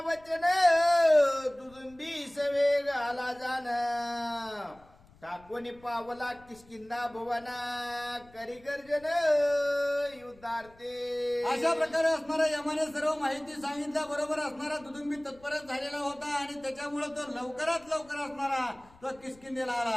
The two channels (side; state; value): left; noise; rumble, 26 dB below the sound